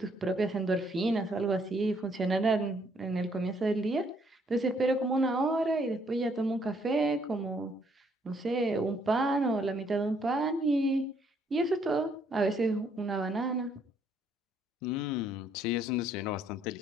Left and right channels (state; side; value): normal; both; correlation 0.68